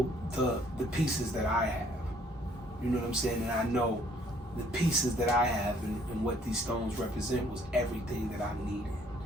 the pieces that I have. You know what I'm saying? And I know the pieces that I have and what these stones represent was everything that I needed.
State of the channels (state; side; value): normal; both; correlation 0.62